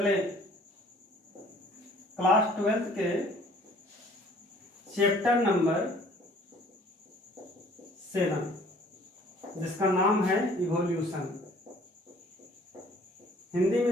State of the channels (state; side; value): normal; both; correlation 0.55